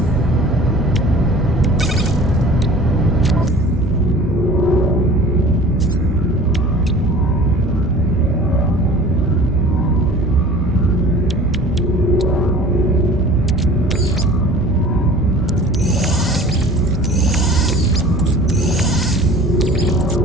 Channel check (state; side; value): normal; both; correlation 0.44